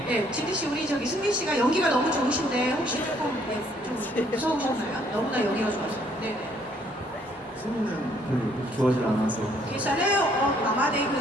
네, 지디 씨 우리 저기 승민 씨가 연기가 너무 좋으신데 혹시 조금 좀 무서우셨나요? 너무나 연기가 좋아서. 네. 승민은 별로 좋아하지 않아서. 계산에 남아대 그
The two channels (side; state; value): both; normal; correlation 0.65